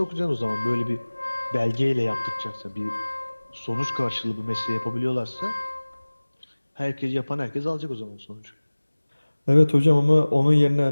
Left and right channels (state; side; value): inverted; both; correlation -1.00